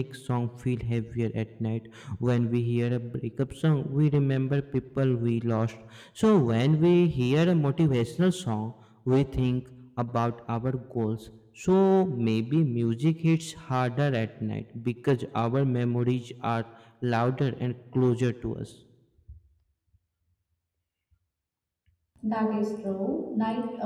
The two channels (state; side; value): identical; both; correlation 1.00